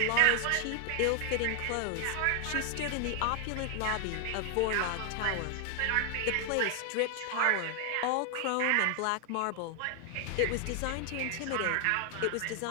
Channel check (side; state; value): both; different; correlation 0.00